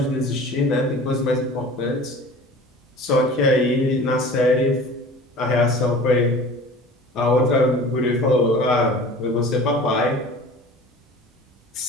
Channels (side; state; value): both; normal; correlation 0.41